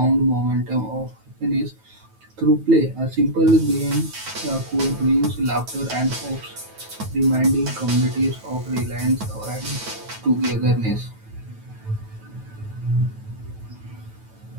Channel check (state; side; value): late; left; 9.2 ms